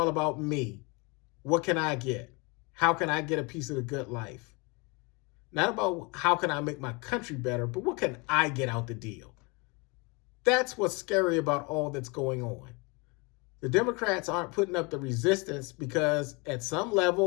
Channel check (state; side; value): quieter; right; 28.3 dB